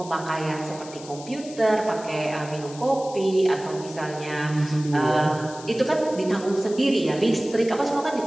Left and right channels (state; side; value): noise; left; hiss, 17 dB below the sound